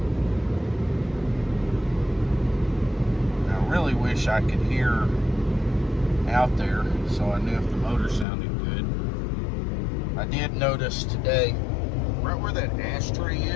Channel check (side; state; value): right; drops out; at 8.2 s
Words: I really wish I could hear out there so I knew if the motor sounded good. I did notice today, right where that ashtray